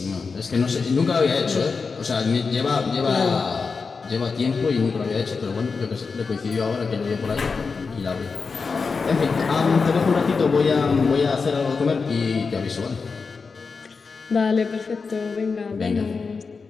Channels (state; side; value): quieter; right; 4.8 dB